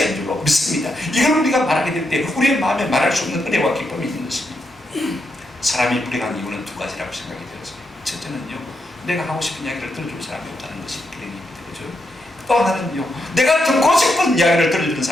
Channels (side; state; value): both; normal; correlation 0.82